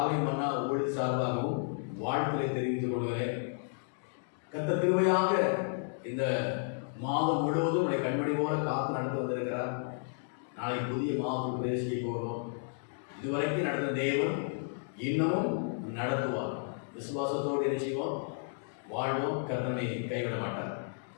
மன்னா ஊழியர் சார்பாகவும் வாழ்த்துக்களை தெரிவித்துக் கொள்கிறேன். கர்த்தர் கிருபையாக இந்த மாதம் முழுவதும் உடைய கண்மணி போல காத்து நடந்து வந்திருக்கிறார். நாளைக்கு புதிய மாதத்துக்கு பிரவேசிக்க போகிறோம். இதுவரைக்கும் நடந்த தேவன் இன்னமும் நடத்துவார். விசுவாசத்தோடு என்ன செய்வோம்? வாழ்வோம். கர்த்தனை கைவிட மாட்டார்.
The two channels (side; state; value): right; silent; digital silence